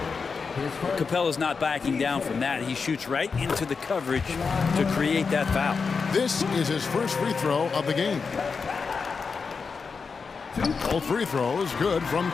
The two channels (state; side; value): quieter; right; 5.1 dB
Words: Capella's not backing down from that. He shoots right into the coverage to create that foul. This is his first free throw of the game. Both free throws good from